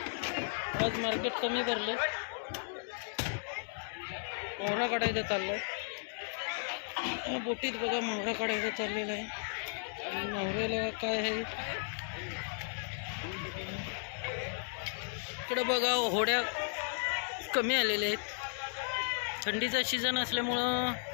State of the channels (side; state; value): right; silent; digital silence